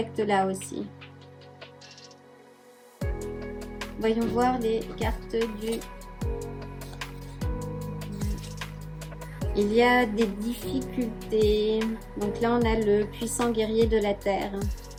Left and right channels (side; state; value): both; identical; correlation 1.00